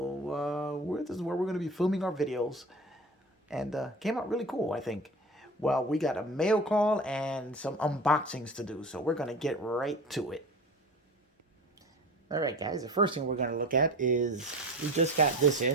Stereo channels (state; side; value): normal; both; correlation 0.34